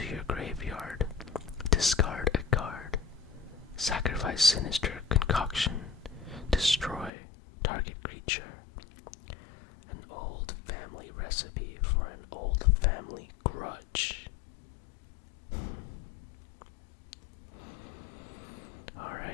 your graveyard. Discard a card. Sacrifice Sinister Concoction. Destroy target creature. An old family recipe for an old family grudge.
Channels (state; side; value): drops out; right; at 7.1 s